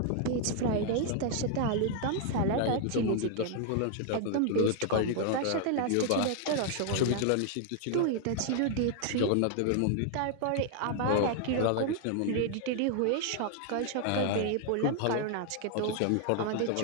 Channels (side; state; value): both; different; correlation 0.00